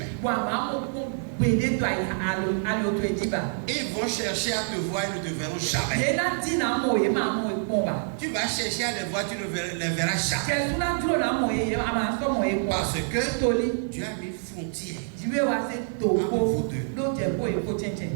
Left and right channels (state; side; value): silent; left; digital silence